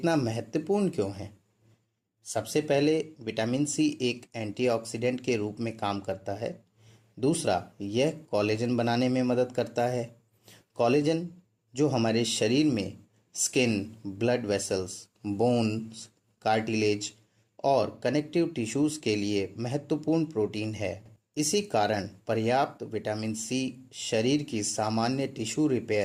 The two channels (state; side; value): identical; both; correlation 1.00